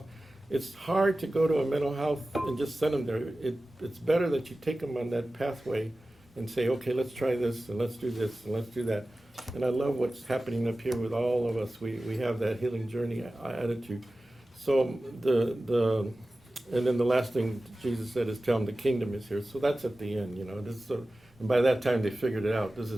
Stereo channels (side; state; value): both; normal; correlation 0.96